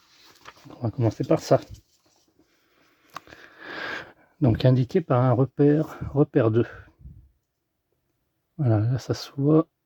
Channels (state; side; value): identical; both; correlation 1.00